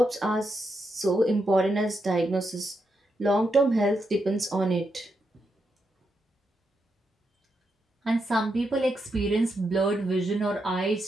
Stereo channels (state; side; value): normal; both; correlation 0.83